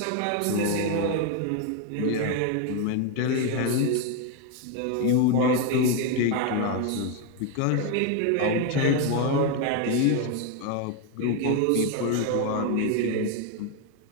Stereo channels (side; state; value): both; different; correlation 0.01